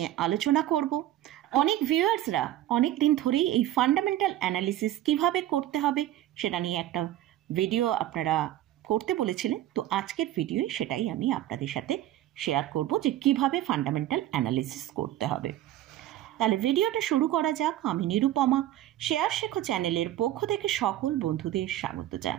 আলোচনা করব। অনেক ভিউয়ার্সরা অনেক দিন ধরেই এই ফান্ডামেন্টাল অ্যানালিসিস কিভাবে করতে হবে সেটা নিয়ে একটা ভিডিও আপনারা করতে বলেছিলেন। তো আজকের ভিডিওয়ে সেটাই আমি আপনাদের সাথে শেয়ার করব যে কিভাবে ফান্ডামেন্টাল অ্যানালিসিস করতে হবে। তাহলে ভিডিওটা শুরু করা যাক। আমি নিরুপমা, শেয়ার শেখো চ্যানেলের পক্ষ থেকে সকল বন্ধুদের স্বাগত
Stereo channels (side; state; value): left; quieter; 13.5 dB